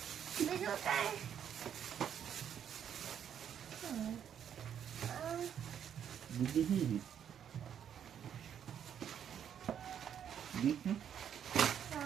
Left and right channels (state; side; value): quieter; left; 8.9 dB